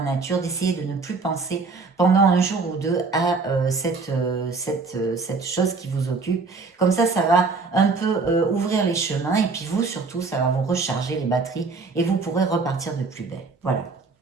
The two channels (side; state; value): left; quieter; 4.2 dB